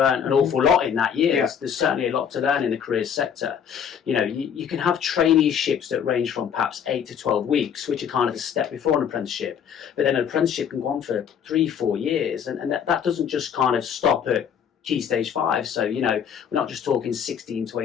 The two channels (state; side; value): quieter; right; 8.0 dB